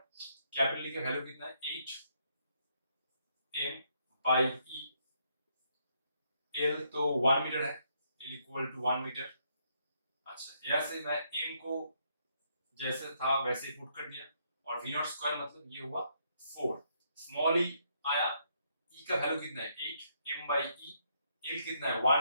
ई का वैल्यू कितना है 8 m बाई e, l तो 1 मीटर है, l इक्वल टू 1 मीटर। अच्छा यहाँ से मैं m को जैसे था वैसे ही पुट कर दिया और v नॉट स्क्वायर मतलब ये हुआ 4, स्मॉल ई आया, ई का वैल्यू कितना है 8 m by e, l कितना है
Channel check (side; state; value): both; inverted; correlation -0.74